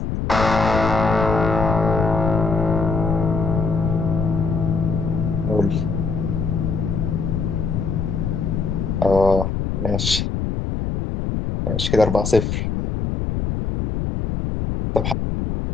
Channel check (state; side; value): noise; left; rumble, 1 dB below the sound